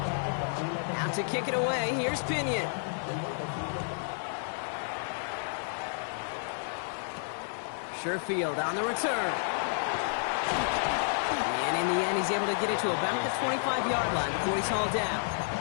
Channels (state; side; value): silent; right; 57 dB below the other